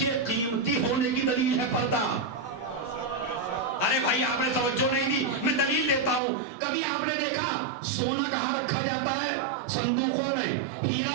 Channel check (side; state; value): left; drops out; at 6.2 s